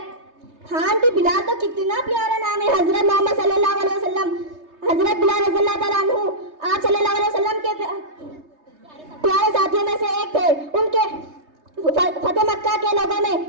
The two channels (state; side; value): late; left; 3.3 ms